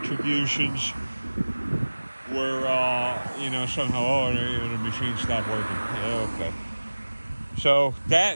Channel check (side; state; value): both; inverted; correlation -1.00